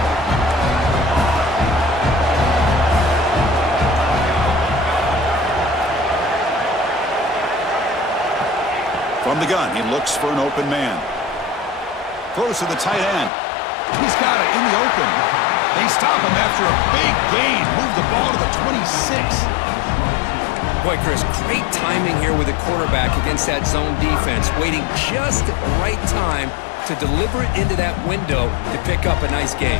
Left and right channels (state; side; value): drops out; right; at 13.3 s